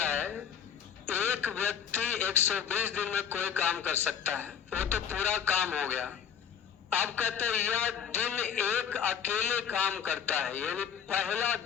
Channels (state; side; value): quieter; right; 8.1 dB